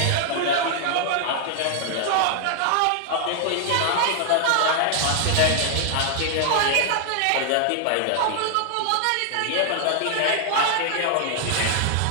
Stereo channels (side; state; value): both; different; correlation 0.00